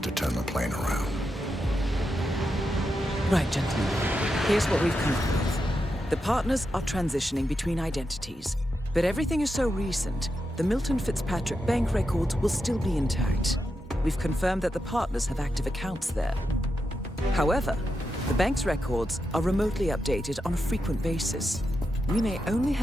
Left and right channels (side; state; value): both; normal; correlation 0.87